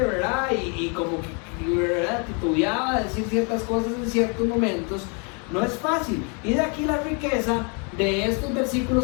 Y como que, ¿verdad?, titubeaba de decir ciertas cosas en ciertos momentos. No es fácil. Y de aquí la riqueza de estos versículos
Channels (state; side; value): quieter; right; 35.8 dB